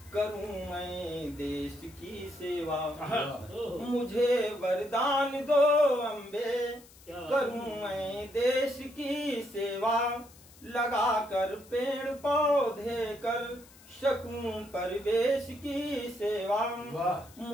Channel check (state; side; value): noise; left; hiss, 23 dB below the sound